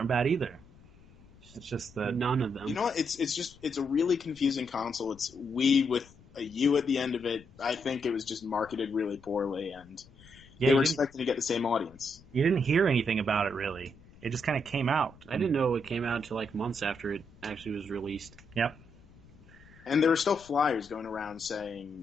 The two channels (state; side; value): noise; left; rumble, 24 dB below the sound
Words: bad either. It's just that none of them. You know what? It's a really confusing console. It's Wii with a U at the end of it. I think it was just marketed really poorly, and they were expecting to get the same audience. You didn't hear anything about it really. It just kind of came out. I didn't know it came out until months after it actually was released. Yep. And there were still flyers going around